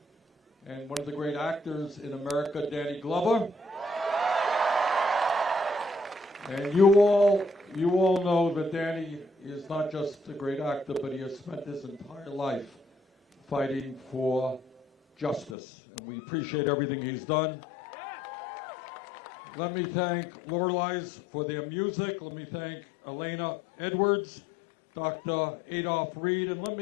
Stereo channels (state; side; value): drops out; right; at 15.6 s